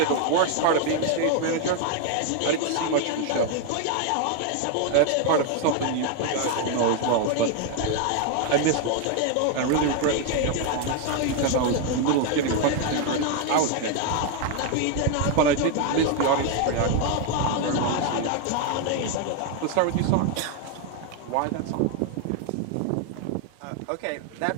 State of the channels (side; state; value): both; different; correlation 0.00